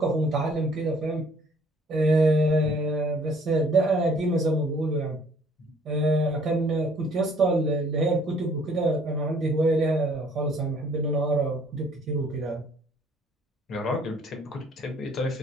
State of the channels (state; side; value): normal; both; correlation 0.59